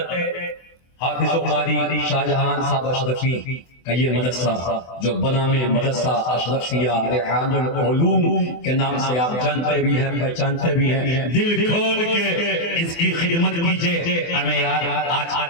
حافظ و قاری شاہجہان صاحب اشرفی کا یہ مدرسہ جو بنا میں مدرسہ اشرفیہ ریحان العلوم کے نام سے آپ جانتے بھی ہیں، پہچانتے بھی ہیں، دل کھول کے اس کی خدمت کیجئے۔ ہمیں یار آج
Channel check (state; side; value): late; right; 24 ms